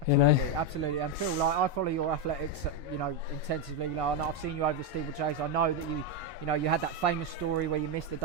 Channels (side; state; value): both; normal; correlation 0.05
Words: Absolutely. And Phil, I follow your athletics, intensively. I've seen you over the steeplechase. I know that you had that famous story where you missed the